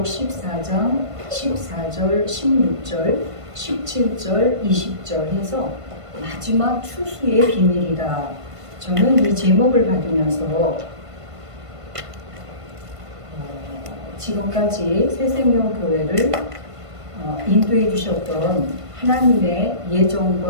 14장 14절, 16절, 17절, 20절 해서 마지막 추수의 비밀이다. 저는 이 제목을 받으면서 지금까지 새생명교회를 인도해 주셨던 하나님의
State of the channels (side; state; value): left; late; 1.5 ms